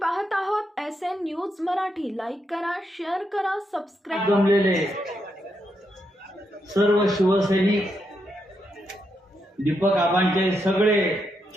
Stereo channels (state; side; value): normal; both; correlation 0.81